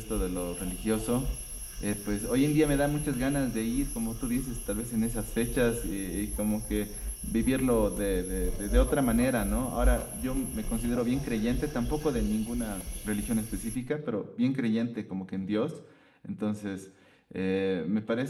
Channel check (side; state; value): both; identical; correlation 1.00